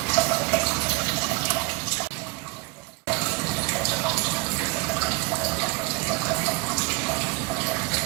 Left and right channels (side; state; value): left; quieter; 26.7 dB